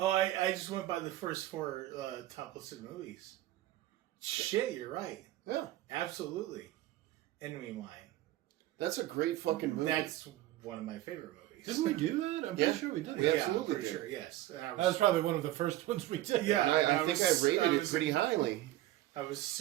I just went by the first four top listed movies. Shit, you're right. Yeah, Absolutely. Enemy Mine. that's a great fucking movie. That's one of my favorite movies. Didn't we do that? I'm Yeah. pretty sure we did. Yeah. Yeah, absolutely I'm pretty did. sure, yes. And That was probably one of the first ones we did. Yeah. I think I rated it was- pretty highly. I was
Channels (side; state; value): left; quieter; 15.4 dB